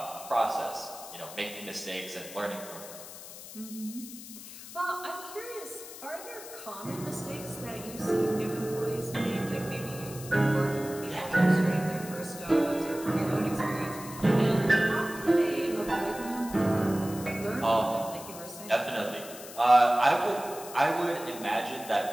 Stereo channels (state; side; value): noise; left; hiss, 14 dB below the sound